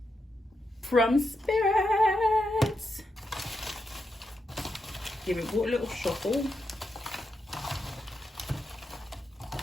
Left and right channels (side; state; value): both; normal; correlation 0.85